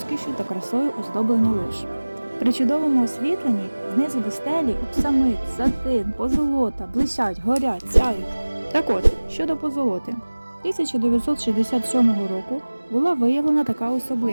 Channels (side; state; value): both; inverted; correlation -1.00